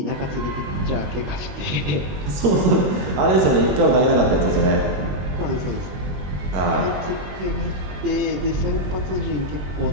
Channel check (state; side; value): late; left; 21 ms